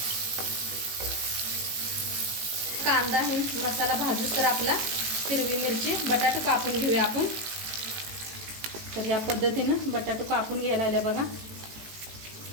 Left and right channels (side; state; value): left; late; 18 ms